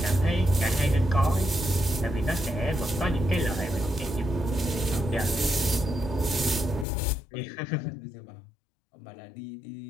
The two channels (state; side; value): drops out; right; at 6.9 s